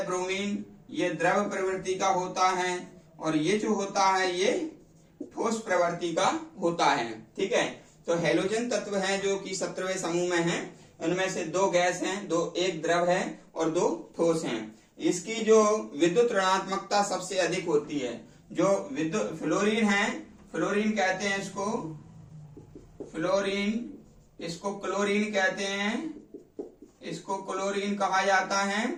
ब्रोमीन, ये द्रव प्रवृत्ति का होता है। और ये जो होता है ये ठोस प्रवृत्ति का होता है। ठीक है, तो हैलोजन तत्व हैं जो कि 17वें समूह में हैं। उनमें से 2 गैस हैं, एक द्रव है और 2 ठोस हैं। इसकी जो विद्युत ऋणात्मकता सबसे अधिक होती है। जो विद्युत फ्लोरीन है, फ्लोरीन कहते हैं इसको, इसको क्लोरीन कहते हैं, इसको क्लोरीन कहा जाता है,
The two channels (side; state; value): both; identical; correlation 1.00